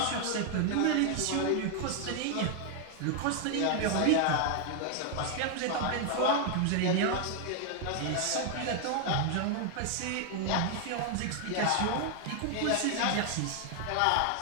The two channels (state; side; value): different; both; correlation 0.00